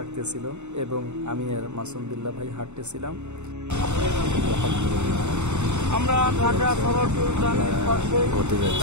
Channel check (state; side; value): late; left; 0.83 ms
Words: এবং আমি আর মাসুম বিল্লাহ ভাই হাঁটতেছিলাম। আমরা ঢাকা সড়ক উদ্যানের পাশে